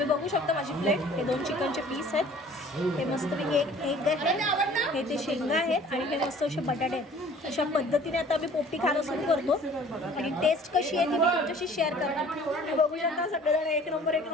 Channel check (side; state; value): both; normal; correlation 0.51